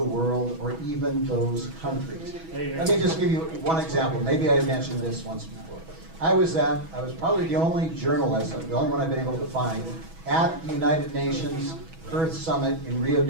world or even those countries. Let me just give you one example. Maybe I mentioned this once before. I was probably the only journalist, the only one I've been able to find, at the United Nations Earth Summit in Rio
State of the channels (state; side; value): late; left; 6.1 ms